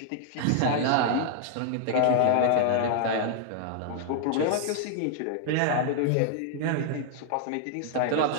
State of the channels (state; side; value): different; both; correlation 0.00